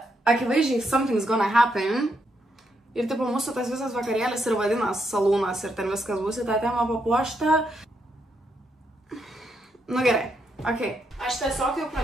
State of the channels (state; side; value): normal; both; correlation 0.79